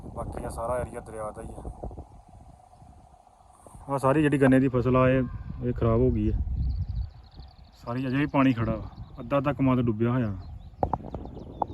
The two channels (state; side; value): identical; both; correlation 1.00